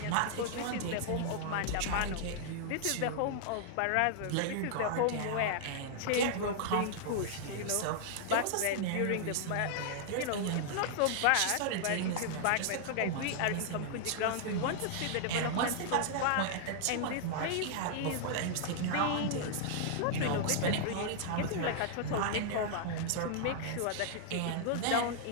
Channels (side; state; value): both; different; correlation -0.01